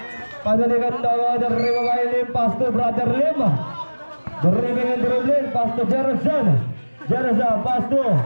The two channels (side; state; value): both; inverted; correlation -1.00